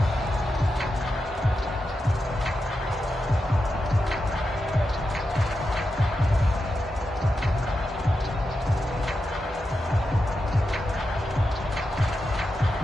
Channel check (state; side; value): normal; both; correlation 0.88